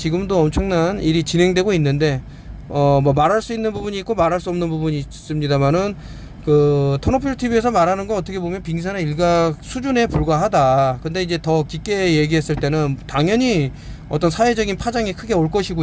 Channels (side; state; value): both; identical; correlation 1.00